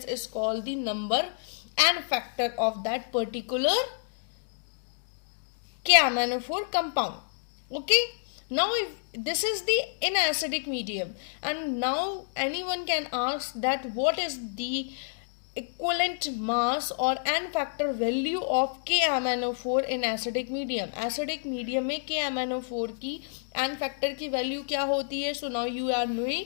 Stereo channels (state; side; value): silent; right; digital silence